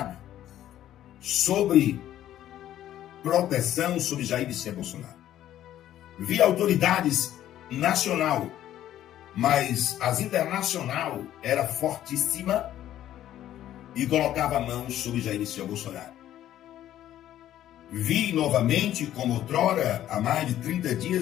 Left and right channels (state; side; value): quieter; right; 12.3 dB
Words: sobre proteção sobre Jair Messias Bolsonaro. Vi autoridades nacional, mas as internacional era fortíssima e colocava mãos sobre Jair Messias Bolsonaro. Vi novamente, como outrora, há mais de 30